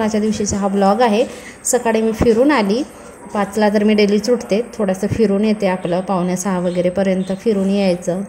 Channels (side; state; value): both; identical; correlation 1.00